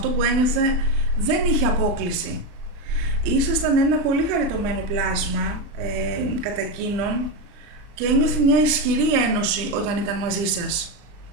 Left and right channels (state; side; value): late; left; 39 ms